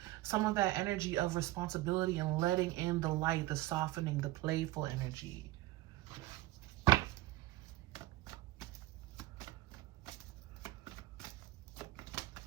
some of that energy of responsibility and letting in the light, the softening, the playful energy.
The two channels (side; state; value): left; quieter; 17.1 dB